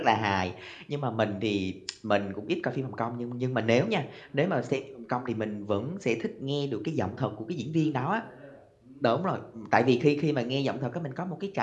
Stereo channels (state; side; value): identical; both; correlation 1.00